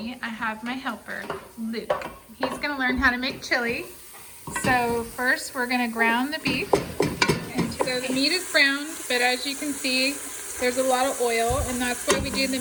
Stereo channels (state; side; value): identical; both; correlation 1.00